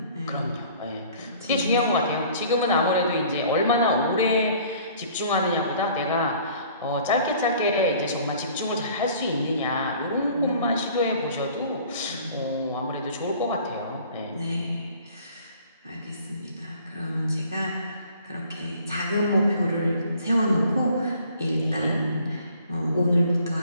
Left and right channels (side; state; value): both; inverted; correlation -0.53